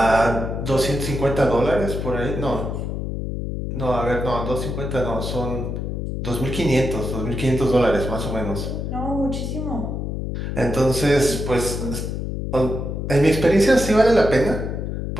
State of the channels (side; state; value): left; noise; hum, 4 dB below the sound